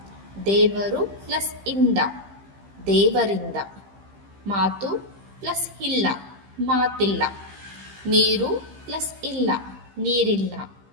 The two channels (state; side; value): late; left; 15 ms